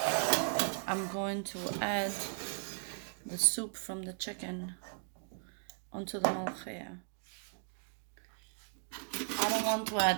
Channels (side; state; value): left; silent; digital silence